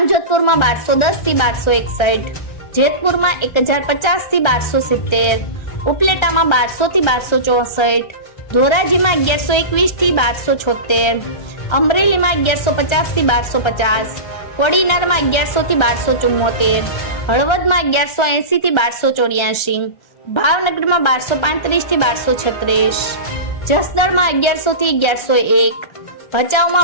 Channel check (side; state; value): right; late; 1.3 ms